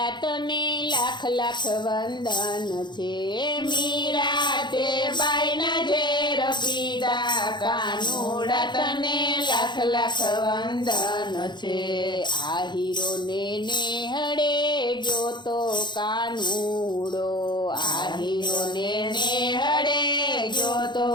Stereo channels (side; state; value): right; late; 0.22 ms